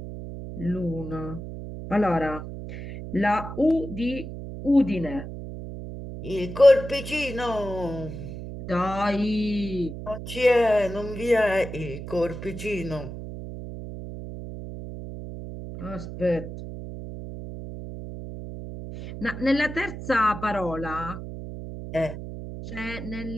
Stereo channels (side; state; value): right; noise; hum, 9 dB below the sound